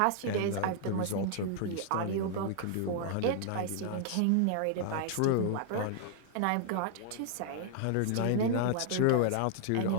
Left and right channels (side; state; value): both; different; correlation -0.01